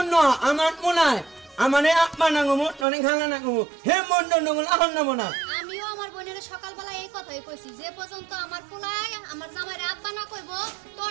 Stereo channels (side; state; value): left; drops out; at 2.9 s